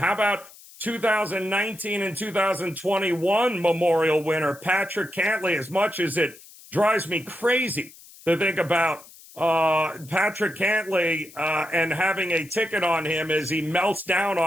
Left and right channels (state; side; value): noise; left; hiss, 21 dB below the sound